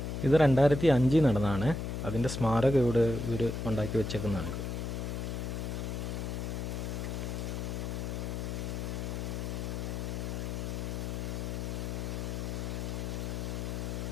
ഇത് 2005 നടന്നതാണ്. അതിൻ്റെ സ്മാരകം ഇവിടെ ഇവർ ഉണ്ടാക്കി വെച്ചേക്കുന്നതാണ്.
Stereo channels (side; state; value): left; noise; hum, 3 dB below the sound